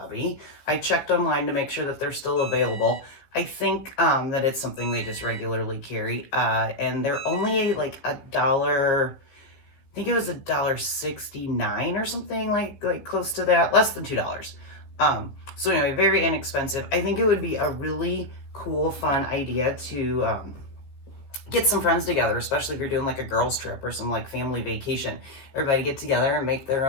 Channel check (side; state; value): right; late; 15 ms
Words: I checked online to make sure that they're still available. I think that it's something they just regularly carry, and they're only like I think it was $1.69 or something like close to that, less than $2. So anyway, very inexpensive. I think it would be a really cool, fun idea to get some friends together, especially if you're doing like a girls trip or some like family vacation. Everybody get together and make their